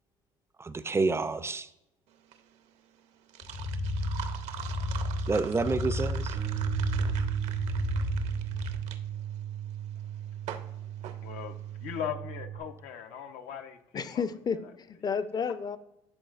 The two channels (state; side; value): normal; both; correlation 0.63